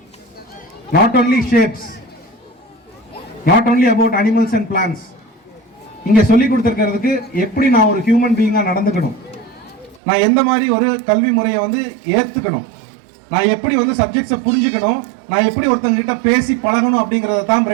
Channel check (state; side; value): drops out; left; at 10.0 s